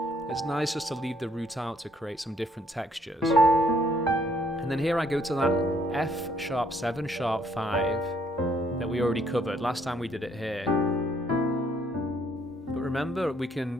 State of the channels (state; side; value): normal; both; correlation 0.67